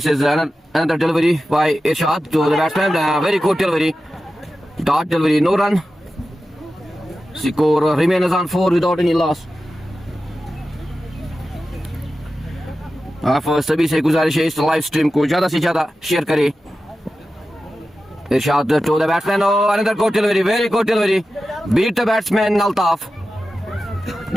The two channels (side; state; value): both; normal; correlation 0.93